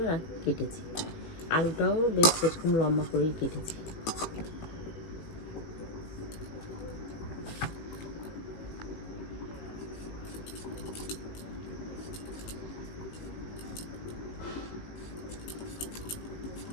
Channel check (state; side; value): late; right; 18 ms